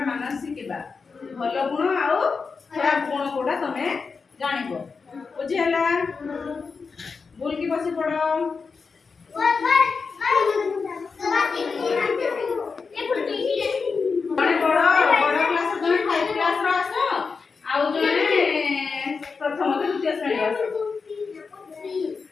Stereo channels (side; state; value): right; quieter; 5.0 dB